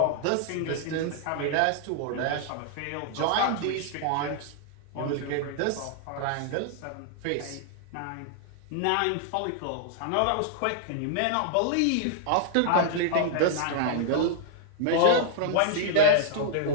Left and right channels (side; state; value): both; different; correlation -0.01